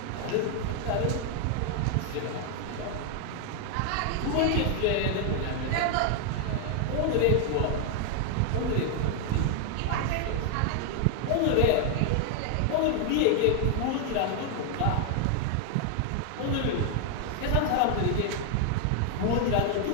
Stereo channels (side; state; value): both; different; correlation 0.00